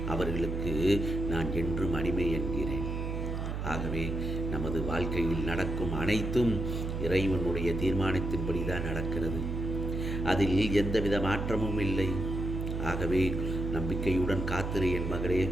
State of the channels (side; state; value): right; noise; hum, 3 dB below the sound